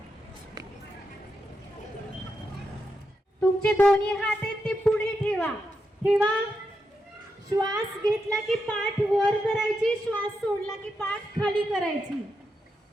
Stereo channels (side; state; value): both; normal; correlation 0.85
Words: तुमचे दोन्ही हात आहेत ते पुढे ठेवा. ठेवा. श्वास घेतला की पाठ वर करायची, श्वास सोडला की पाठ खाली करायची.